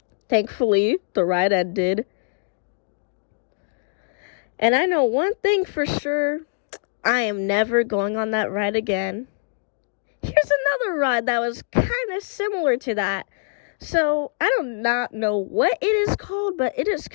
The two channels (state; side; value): silent; right; digital silence